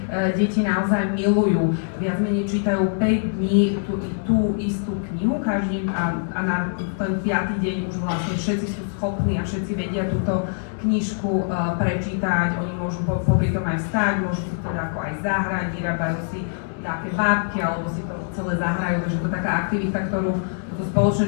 deti naozaj milujú. Viac menej čítajú 5 dní tú istú knihu každý a na ten 5. deň už vlastne všetci sú schopní a všetci vedia túto knižku prečítať. Oni môžu popri tom aj vstať, môžu si teda ako aj zahrať, vyrábajú si nejaké bábky alebo si to celé zahrajú, takže to je taká aktivita, ktorú to spoločné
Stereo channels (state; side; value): silent; right; digital silence